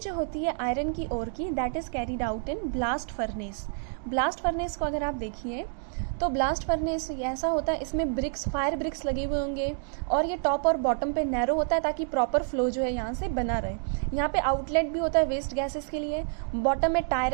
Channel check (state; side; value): silent; left; 57 dB below the other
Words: जो होती है आयरन की ओर की, that is carried out in blast furnace. Blast furnace को अगर आप देखिए तो ब्लास्ट फर्नेस ऐसा होता है, इसमें ब्रिक्स, फायर ब्रिक्स लगे हुए होंगे, और ये टॉप और बॉटम पे नैरो होता है ताकि प्रॉपर फ्लो जो है यहाँ से बना रहे. यहाँ पे आउटलेट भी होता है वेस्ट गैसेस के लिए. बॉटम में